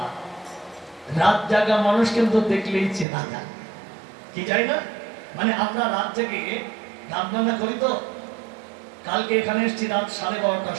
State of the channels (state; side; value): drops out; left; at 3.1 s